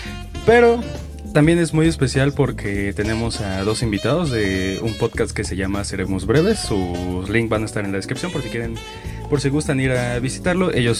pero también es muy especial porque tenemos a dos invitados de un podcast que se llama Seremos Breves. Sus links van a estar en la descripción por si quieren, por si gustan ir a visitarlo. Ellos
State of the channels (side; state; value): both; identical; correlation 1.00